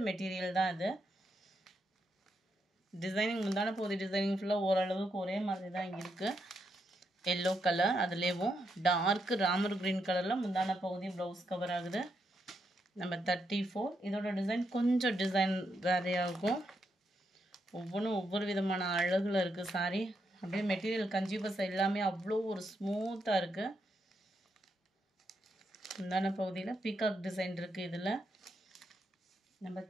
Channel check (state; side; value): normal; both; correlation 0.81